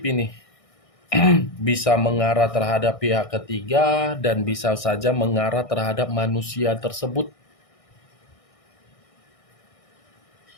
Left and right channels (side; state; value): right; late; 1.6 ms